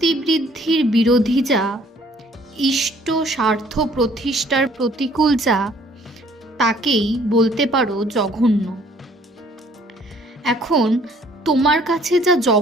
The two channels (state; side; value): normal; both; correlation 0.59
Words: বিরোধী যা, ইষ্ট স্বার্থ প্রতিষ্ঠার প্রতিকূল যা, তাকেই বলতে পারো জঘন্য। এখন তোমার কাছে যা